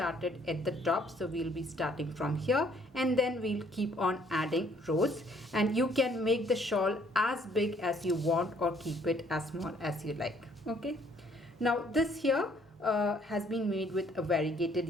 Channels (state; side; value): normal; both; correlation 0.63